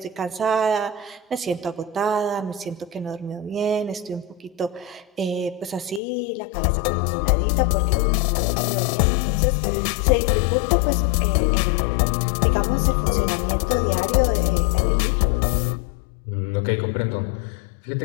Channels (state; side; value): drops out; right; at 6.0 s